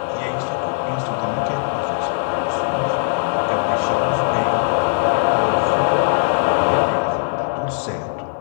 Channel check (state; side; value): silent; right; 55 dB below the other